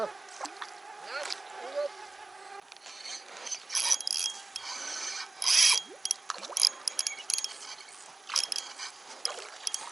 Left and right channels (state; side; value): quieter; left; 3.1 dB